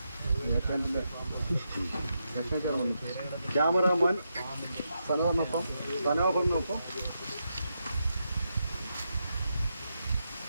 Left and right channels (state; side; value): inverted; both; correlation -0.84